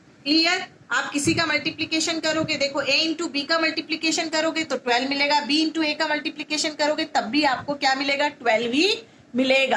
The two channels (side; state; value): both; identical; correlation 1.00